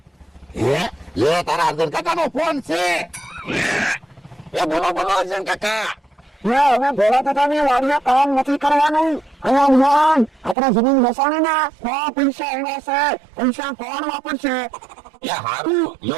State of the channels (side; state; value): left; drops out; at 10.6 s